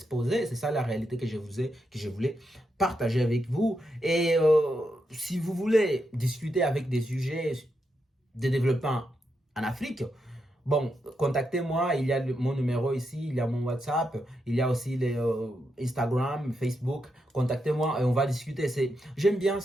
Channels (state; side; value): normal; both; correlation 0.84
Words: C'est ça la réalité que je voulais partager avec vous. Et si vous voulez discuter avec des sujets de développement en Afrique, bon, contactez-moi. Il y a mon numéro ici, il y a mon WhatsApp, il y a aussi les, Instagram, Facebook. Contactez-moi et on va discuter. J'aime bien